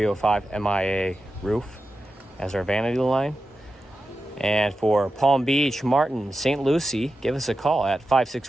as our vanity line. And for Palm Beach, Martin, St. Lucie, give us a call at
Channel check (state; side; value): normal; both; correlation 0.91